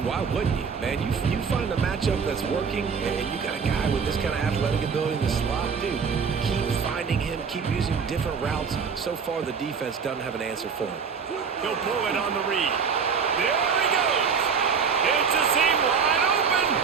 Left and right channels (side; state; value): left; quieter; 6.0 dB